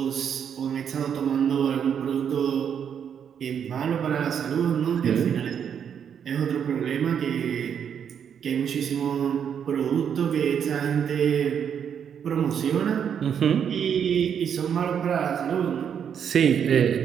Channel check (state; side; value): quieter; left; 8.0 dB